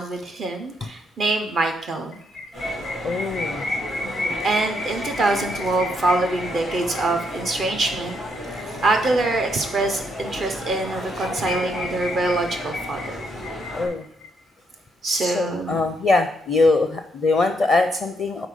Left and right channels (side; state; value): both; normal; correlation 0.75